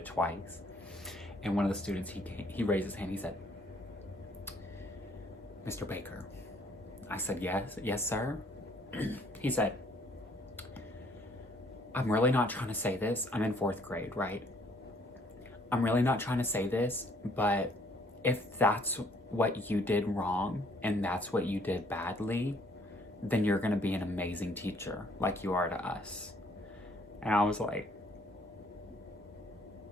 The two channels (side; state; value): both; normal; correlation 0.63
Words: twice. And one of the students, he raised his hand. He said, Mr. Baker. I said, yes, sir. He said, I'm really not trying to say this. I'm in 4th grade, right? I'm really not trying to say this, but if that's what you did wrong and that's what you did badly, then you're gonna be an amazing teacher like you are to us. And I was like,